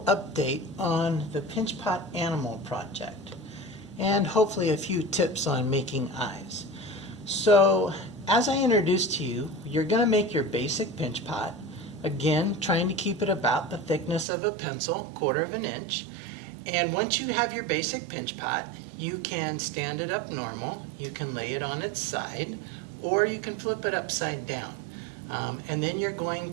update on the Pinch Pot Animal Project and hopefully a few tips on making eyes. So as I introduced to you, you're going to make your basic pinch pot, again trying to keep it about the thickness of a pencil, 1/4 of an inch. And once you have your basic pinch pot, you can stand it up normal, you can lay it on its side, or you can flip it upside down. And then you're going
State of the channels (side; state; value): left; drops out; at 14.2 s